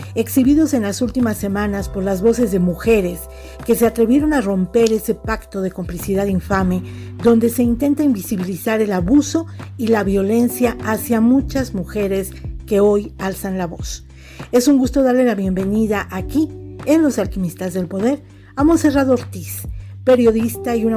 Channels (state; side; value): identical; both; correlation 1.00